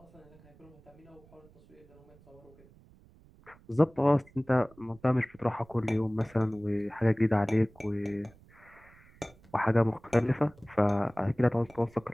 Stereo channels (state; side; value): noise; right; rumble, 26 dB below the sound